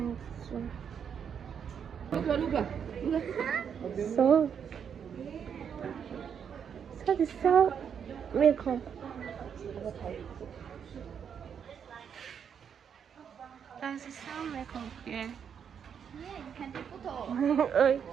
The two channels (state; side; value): quieter; left; 7.6 dB